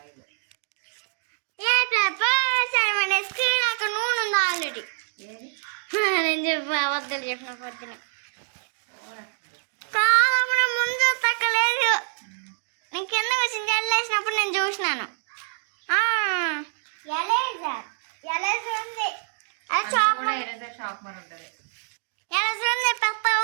నాకు నూనె ఉంది ఆల్రెడీ. నేను చెప్పి అబద్ధాలు చెప్పిన పొద్దున కాదమ్మా, ముందు తక్కలేదు. నేను కింద వచ్చింది జల్లేసినప్పుడు నేను చూసినాను. ఉంది పెద్ద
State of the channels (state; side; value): silent; left; 60 dB below the other